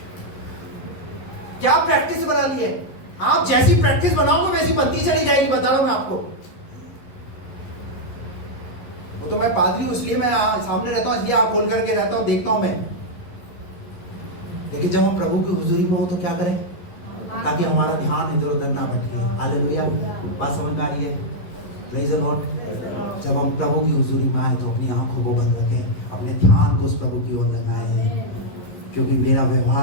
क्या प्रैक्टिस बना ली है। आप जैसी प्रैक्टिस बनाओगे वैसी बनती चली जाएगी, बता रहा हूं मैं आपको। वो तो मैं पादरी हूं इसलिए मैं सामने रहता हूं, इसलिए आप खोल करके रहता हूं, देखता हूं मैं। लेकिन जब हम प्रभु की हुजूरी में हो तो क्या करें? ताकि हमारा ध्यान इधर उधर ना भटके। हालेलुया, बात समझ में आ रही है? Praise the Lord. जब हम प्रभु की हुजूरी में आए तो अपनी आंखों को बंद रखें, अपने ध्यान को उस प्रभु की ओर लगाएं, क्योंकि मेरा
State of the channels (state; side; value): late; right; 11 ms